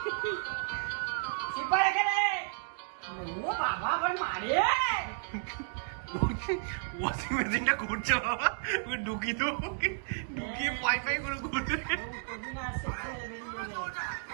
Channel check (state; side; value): silent; left; digital silence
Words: চিপার এখানে। ও বাবা আবার মারে। ওয়াশিং মেশিনটা করছে বাবা, ওকে ঢুকিয়ে দেবো, ঢুকিয়ে পাই পাই করে করতে।